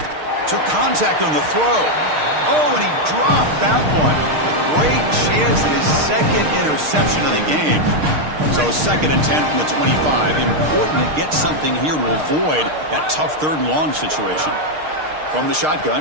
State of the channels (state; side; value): late; left; 6.5 ms